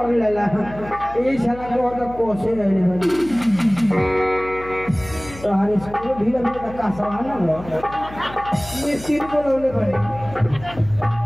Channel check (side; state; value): left; noise; hum, 16 dB below the sound